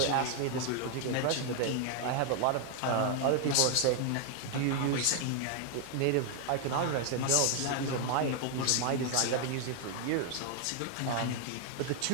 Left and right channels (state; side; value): different; both; correlation 0.00